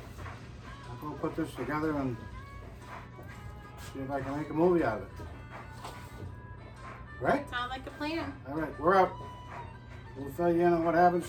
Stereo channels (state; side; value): identical; both; correlation 1.00